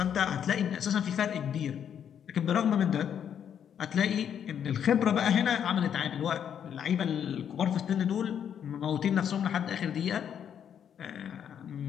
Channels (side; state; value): right; quieter; 8.7 dB